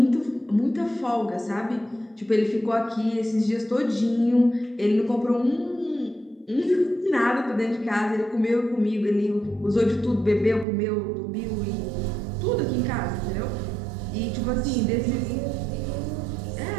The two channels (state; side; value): drops out; left; at 10.7 s